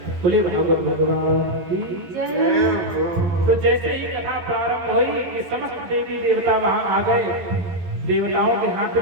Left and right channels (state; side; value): late; left; 11 ms